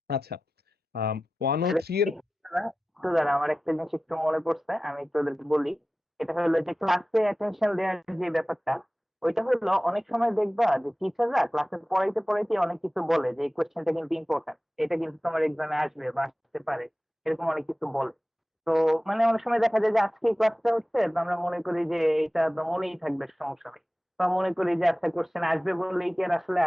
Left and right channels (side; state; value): both; normal; correlation 0.96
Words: আচ্ছা, 103 এর একটু দাঁড়া, আমার একটা জিনিস একটু মনে পড়ছে, আমি একটু ওদেরকে বলি। এটা হলো যে ক্লাসে অ্যাটেনশন দেওয়ার যে ব্যাপারটা, ওইটা হলো অনেক সময় দেখবা যে টিচাররা ক্লাসে পড়াইতে পড়াইতে অনেক কিছু বলে যে এই কোয়েশ্চেনটা কিন্তু ইম্পর্টেন্ট, এটা কিন্তু তোমার এক্সামে আসবে বা আসতে পারে, এরকম অনেক কিছু বলে। তো মানে অনেক সময় দেখা যায় যে আজকে এই ক্লাসটা হচ্ছে, তো আমরা মনে করি যে এটা তো মনেই থাকবে, সমস্যা নেই, বা মনে করি যে আচ্ছা কোয়েশ্চেন আসবে বললেই কি আর আসলে